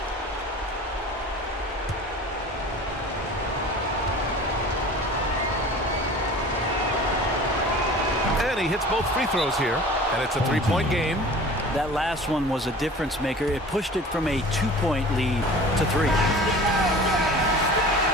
he hits both free throws here, and it's a three-point game. That last one was a difference maker. It pushed it from a 2-point lead to 3.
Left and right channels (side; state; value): both; normal; correlation 0.41